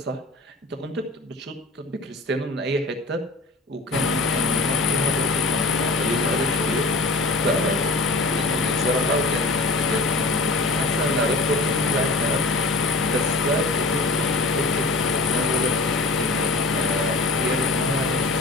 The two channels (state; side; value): quieter; right; 3.1 dB